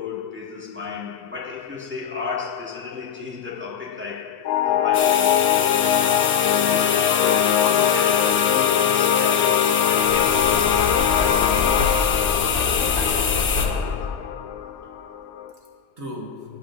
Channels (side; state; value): right; quieter; 8.0 dB